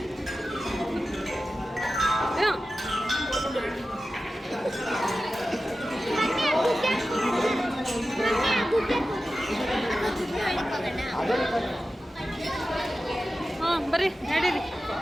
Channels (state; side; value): normal; both; correlation 0.93